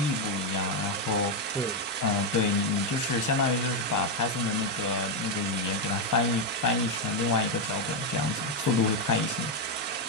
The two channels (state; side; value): normal; both; correlation 0.03